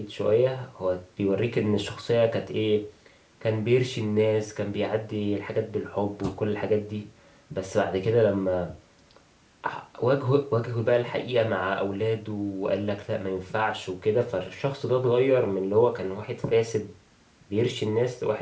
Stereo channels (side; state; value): both; identical; correlation 1.00